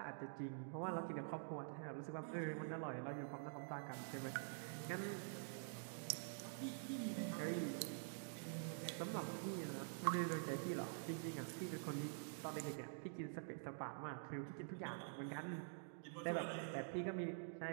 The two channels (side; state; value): left; silent; digital silence